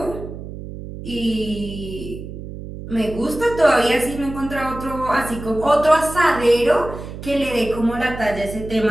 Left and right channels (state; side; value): noise; right; hum, 11 dB below the sound